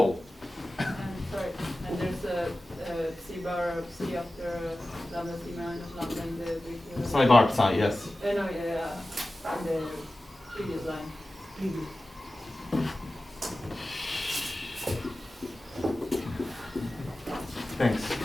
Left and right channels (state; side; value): normal; both; correlation 0.95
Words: Sorry, and there's a psi bar c after lambda c minus lambda in the Psi bar psi, yes. no, yeah, in the previous line. Thanks.